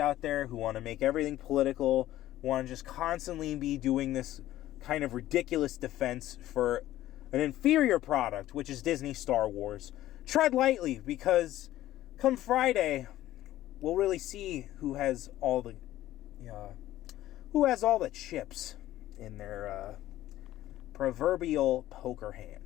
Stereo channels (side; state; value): right; quieter; 14.4 dB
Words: there who want to make everything political, want to just constantly be doing this kind of ridiculous defense for an inferior product, which is Disney Star Wars, tread lightly, because come Friday, we'll really see who has all the chips in their proverbial poker